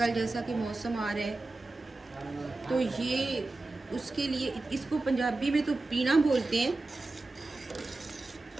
जैसा कि मौसम आ रहा है, तो ये उसके लिए, इसको पंजाबी में तो पीना बोलते हैं,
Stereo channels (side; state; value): left; quieter; 3.2 dB